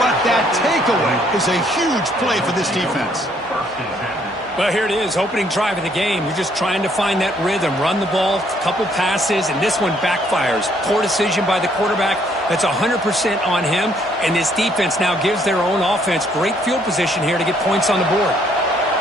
but that takeaway is a huge play for this defense. Well, here it is, opening drive of the game. You're just trying to find that rhythm, run the ball, a couple passes, and this one backfires. Poor decision by the quarterback. That's 100% on him, and this defense now gives their own offense great field position here to get points on the board.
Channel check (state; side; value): normal; both; correlation 0.67